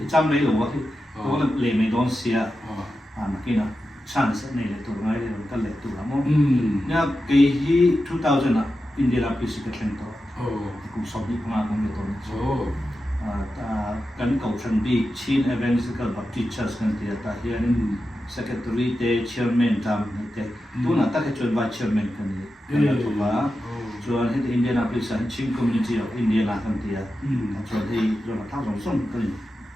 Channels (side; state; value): both; normal; correlation 0.91